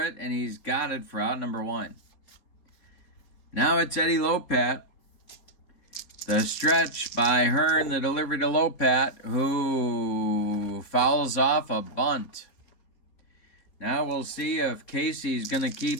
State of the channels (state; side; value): late; right; 4.3 ms